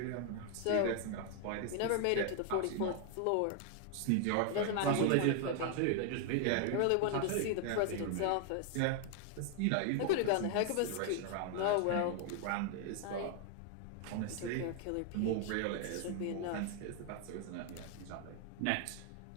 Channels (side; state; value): both; different; correlation 0.00